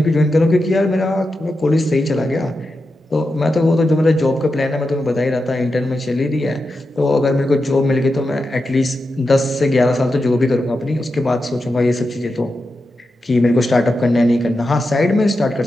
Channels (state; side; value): normal; both; correlation 0.89